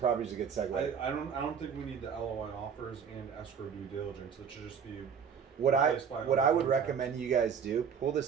a good segue. I don't think we need the LOI offers and escrow due diligence. It should just be What I replaced by would contract. recommend you guys do, pull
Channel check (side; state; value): left; quieter; 7.0 dB